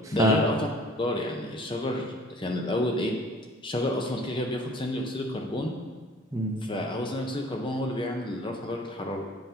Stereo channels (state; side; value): normal; both; correlation 0.51